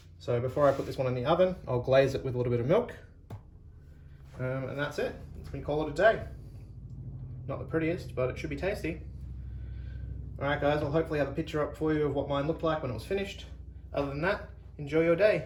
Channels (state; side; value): identical; both; correlation 1.00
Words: So before I put this one in the oven, I'll glaze it with a little bit of milk. And that's it. We can call it a day. Not the prettiest, but it should be tasty. Alright guys, I'll hopefully have a picture up for you of what mine looked like when it was finished. Other than that, enjoy your